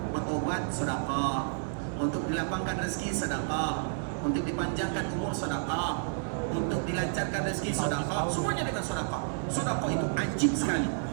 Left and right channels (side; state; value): left; silent; digital silence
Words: berobat sedekah, untuk dilapangkan rezeki sedekah, untuk dipanjangkan umur sedekah, untuk dilancarkan rezeki sedekah, semuanya dengan sedekah. Sedekah itu ajib sekali